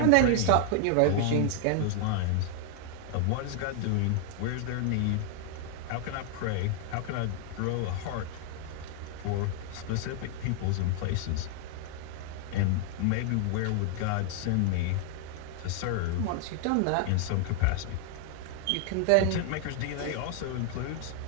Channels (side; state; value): both; different; correlation 0.00